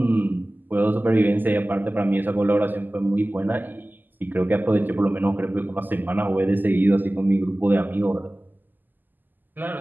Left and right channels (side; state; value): left; late; 0.088 ms